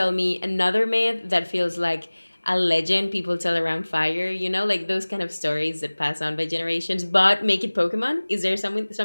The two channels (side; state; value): both; inverted; correlation -1.00